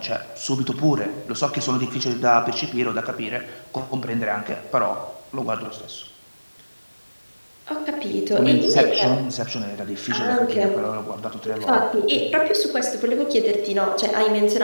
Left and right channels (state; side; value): inverted; both; correlation -1.00